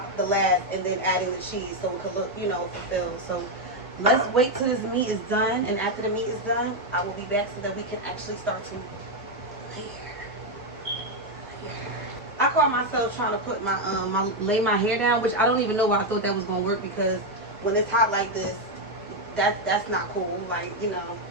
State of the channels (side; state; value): both; normal; correlation 0.04